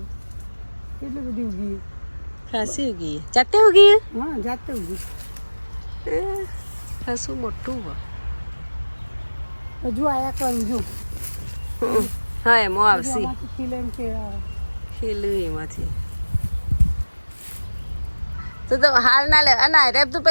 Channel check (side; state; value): both; inverted; correlation -1.00